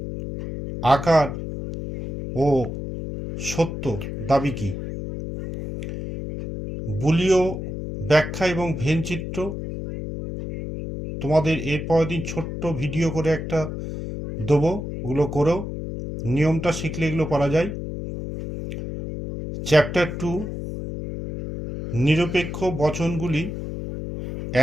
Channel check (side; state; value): left; noise; hum, 6 dB below the sound